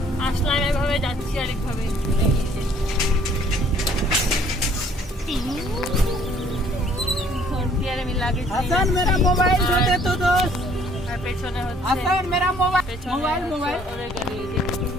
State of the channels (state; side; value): normal; both; correlation 0.59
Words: আসলাম এভাবে, যাচ্ছি আরেকভাবে। আমি লাগেজ হাসান মেরা মোবাইল দে দে তো দোস্ত। আর পেছনে হচ্ছে হাসান মেরা মোবাইল পেছনে মোবাইল ওদের গাড়ি।